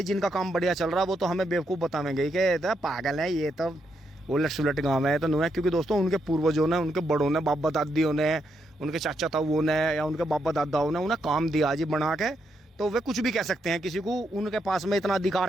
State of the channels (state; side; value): normal; both; correlation 0.80